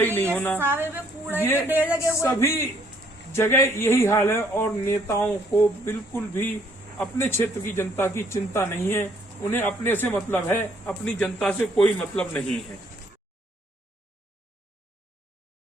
नहीं होना, ये सभी जगह यही हाल है। और नेताओं को बिल्कुल भी अपने क्षेत्र की जनता की चिंता नहीं है, उन्हें अपने से मतलब है, अपनी जनता से कोई मतलब नहीं है।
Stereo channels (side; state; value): both; normal; correlation 0.66